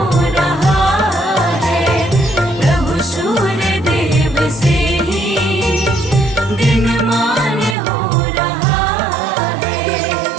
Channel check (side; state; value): left; drops out; at 7.8 s